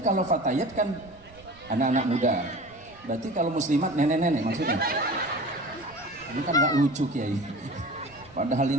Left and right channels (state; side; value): noise; right; rumble, 25 dB below the sound